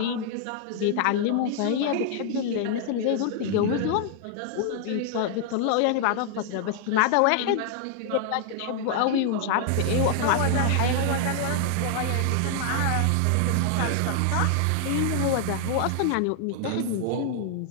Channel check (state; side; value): different; both; correlation 0.00